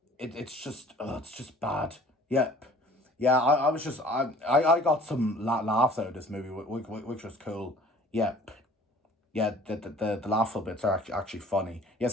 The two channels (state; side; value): normal; both; correlation 0.50